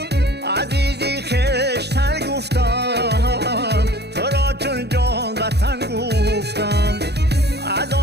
عزیزی خشتن گفتم تو را چون جان وطن گفتم از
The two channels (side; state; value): left; late; 0.48 ms